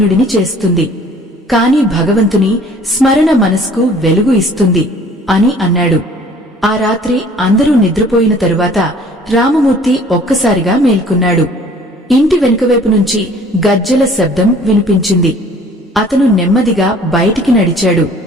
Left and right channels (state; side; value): normal; both; correlation 0.52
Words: చేస్తుంది, కాని భగవంతుని స్మరణ మనస్కు వెలుగు ఇస్తుంది అని అన్నాడు. ఆ రాత్రి అందరూ నిద్రపోయిన తరువాత రామమూర్తి ఒక్కసారిగా మేల్కొన్నాడు. ఇంటి వెనుకవైపు నుంచి గజ్జెల శబ్దం వినిపించింది. అతను నెమ్మదిగా బయటికి నడిచాడు.